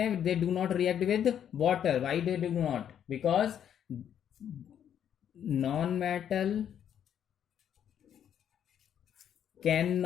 They do not react with water. Why they do not? Because non metal can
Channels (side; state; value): right; quieter; 9.4 dB